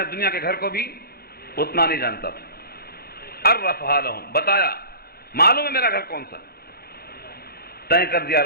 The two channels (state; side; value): late; right; 0.45 ms